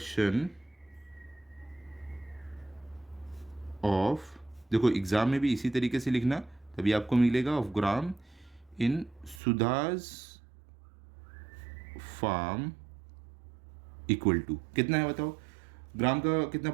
ऑफ, देखो एग्जाम में भी इसी तरीके से लिखना, तभी आपको मिलेगा, ऑफ ग्राम इन सुधास फार्म इक्वल टू कितना है बताओ? ग्राम का कितना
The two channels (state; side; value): drops out; left; at 9.4 s